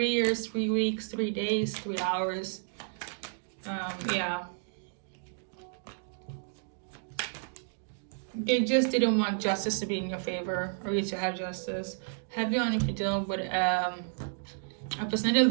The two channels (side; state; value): left; silent; digital silence